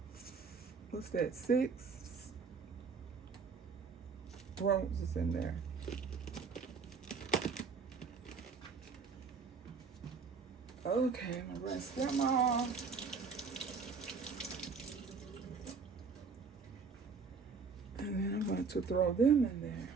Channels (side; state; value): left; quieter; 5.2 dB